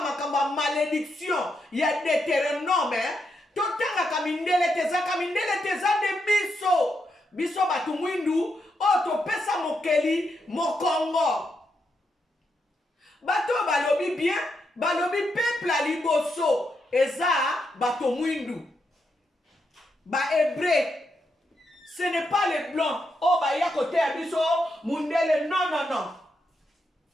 makambo ya malédiction ya Deutéronome totangaka mindele tezaka mindele teza nde biso bato mwindu oyo topesa mokeli mokongo bato balobi bien balobi peuple ya liboso eza bato mwindu bahébreu. Ce n'est pas les blancs. Oh, bah, il y a côté à biso, mundele, non, non, non.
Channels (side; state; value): both; normal; correlation 0.82